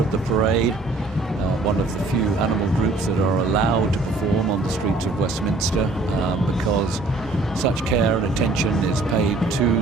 the parade, one of the few animal groups that are allowed to perform on the streets of Westminster because such care and attention is paid to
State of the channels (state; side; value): quieter; left; 3.2 dB